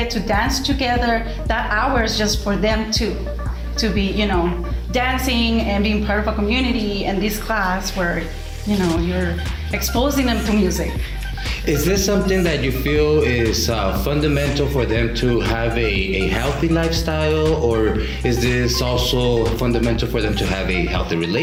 to dance together. That hour is just for them to be, you know, dancing and being part of a community. And this class where, you know, you're exposing them to music. Is this something that you feel is fundamental for them to have a healthy lifestyle, or is this also fundamental for them to have a healthy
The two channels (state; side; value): identical; both; correlation 1.00